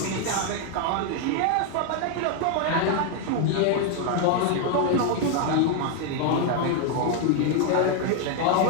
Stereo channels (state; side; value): different; both; correlation 0.01